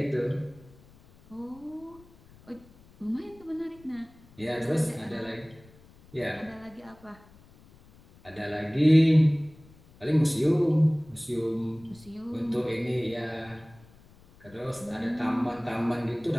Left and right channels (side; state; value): left; noise; rumble, 25 dB below the sound